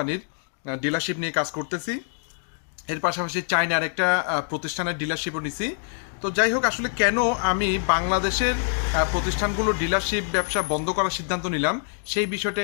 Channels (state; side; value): silent; right; digital silence